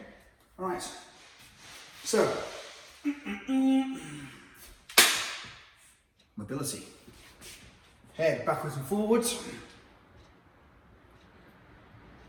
all right. So mobility. Head backwards and forwards.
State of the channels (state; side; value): identical; both; correlation 1.00